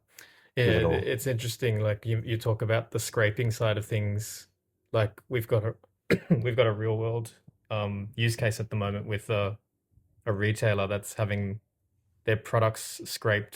Yeah, it's interesting. Like you talk about the scraping side of things. Like we've got a we've got a real world use case at the moment with a retailer that's having their products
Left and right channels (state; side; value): identical; both; correlation 1.00